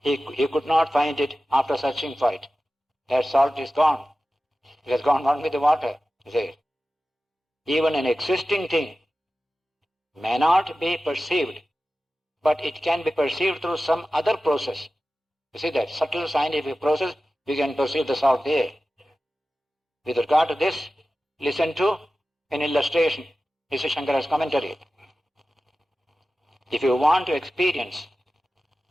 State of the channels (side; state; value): both; normal; correlation 0.95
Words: could not find it after searching for it. That salt is gone. It has gone on with the water. Even an existing thing may not be perceived, but it can be perceived through some other process. You see that subtle scientific process, we can perceive the salt there. With regard to this, listen to an illustration. This is Shankara's commentary. If you want to experience